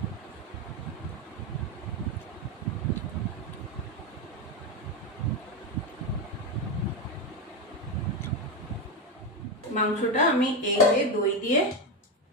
মাংসটা আমি এই যে দই দিয়ে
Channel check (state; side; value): normal; both; correlation 0.11